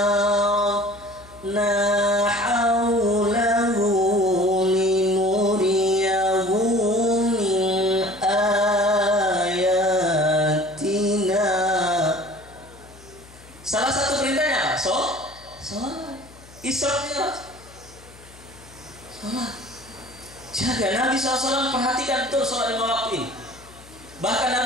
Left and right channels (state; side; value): noise; left; hum, 22 dB below the sound